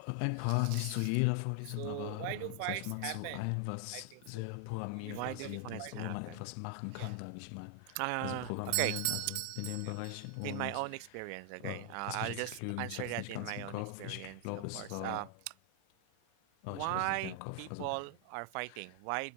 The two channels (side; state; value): both; different; correlation 0.00